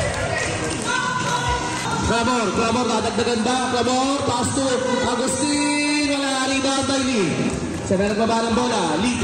Clamor, dadagdagan ba? Clamor, pass to Agustin. Wala. Rebound by Lee. Sabi nagbaba ng bola. Lee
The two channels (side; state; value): both; identical; correlation 1.00